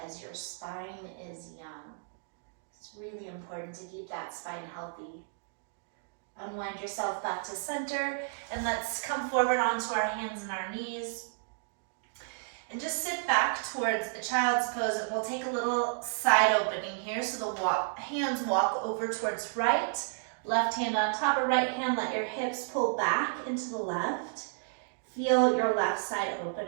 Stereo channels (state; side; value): silent; left; digital silence